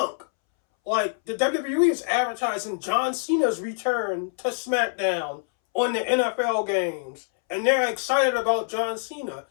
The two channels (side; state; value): right; silent; 62 dB below the other